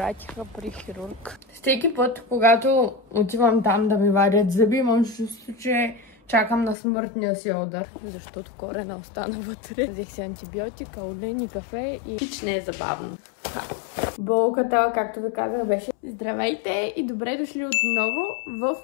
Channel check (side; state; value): right; drops out; at 6.8 s